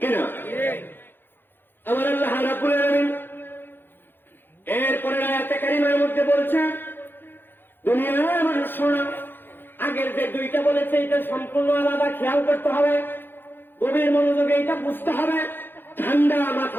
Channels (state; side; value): late; right; 0.099 ms